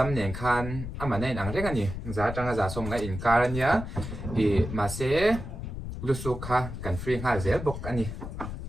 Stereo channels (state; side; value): noise; left; rumble, 7 dB below the sound